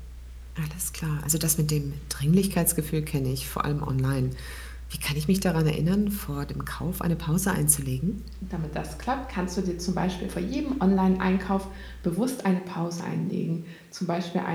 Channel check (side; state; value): both; identical; correlation 1.00